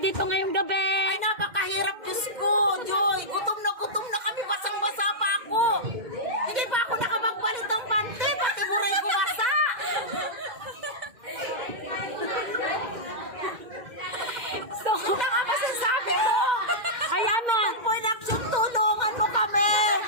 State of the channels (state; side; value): late; left; 2.1 ms